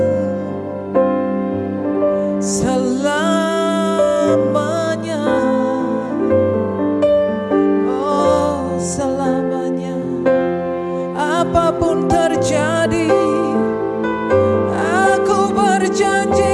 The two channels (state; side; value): identical; both; correlation 1.00